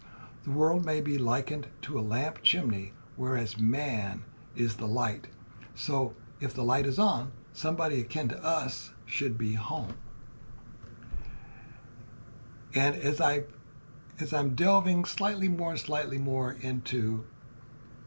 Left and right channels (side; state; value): both; inverted; correlation -1.00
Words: The world may be likened to a lamp chimney, whereas man is the light. So if the light is on, somebody akin to us should be home." And as I'm delving slightly more into